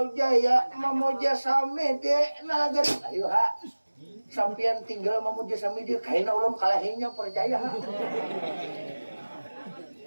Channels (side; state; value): both; inverted; correlation -1.00